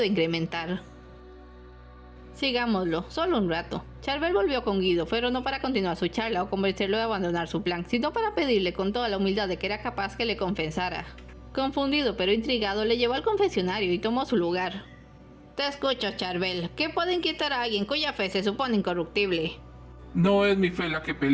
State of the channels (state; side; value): identical; both; correlation 1.00